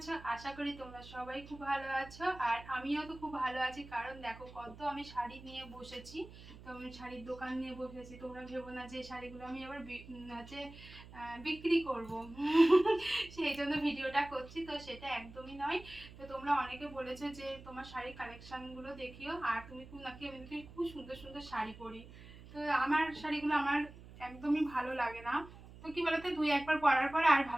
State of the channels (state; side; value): noise; right; hum, 17 dB below the sound